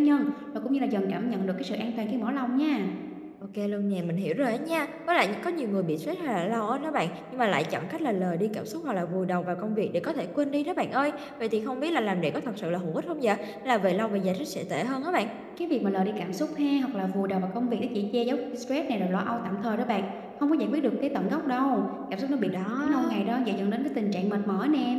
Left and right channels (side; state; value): both; identical; correlation 1.00